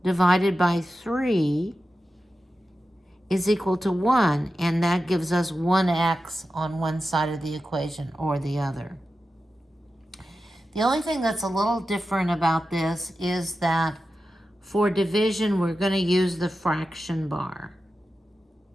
divided by 3 is equal to 1, and that gives us 1x on one side of the equation or the other. The only thing that's a little different about this is that for division, we're going to use the fraction bar.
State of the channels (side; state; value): both; normal; correlation 0.92